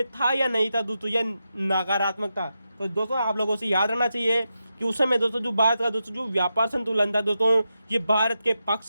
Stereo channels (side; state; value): both; inverted; correlation -0.88